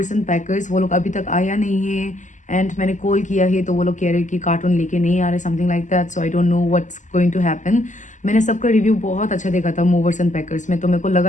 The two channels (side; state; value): right; late; 0.36 ms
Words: and packers, वो लोग अभी तक आया नहीं है एंड मैंने कॉल किया है तो वो लोग कह रहे हैं कि कार्टून लेके नहीं आ रहे, something like that. So I don't know what's going to happen. मैंने सबका रिव्यू बहुत अच्छा देखा था मूवर्स एंड पैकर्स में, तो मेरे को